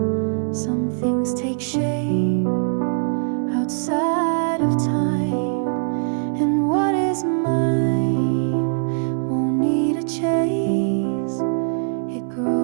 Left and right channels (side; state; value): left; silent; 64 dB below the other